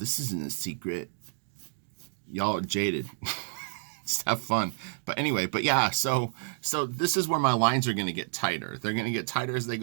isn't a secret. Y'all are jaded. Just have fun. But anyway, yeah, so this is where my lines are going to get tighter. They're going to get tighter as they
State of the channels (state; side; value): silent; left; digital silence